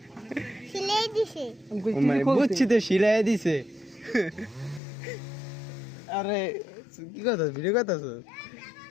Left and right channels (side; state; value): right; drops out; at 4.8 s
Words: সিলাই দিছে। মানে বুঝছি তো, সিলাই দিছে। আরে কি কথা, ভিডিও কথা